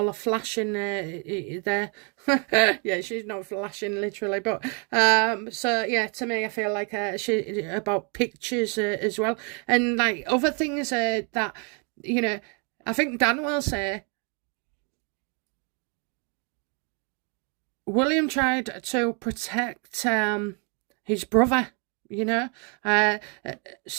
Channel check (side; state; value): left; quieter; 36.5 dB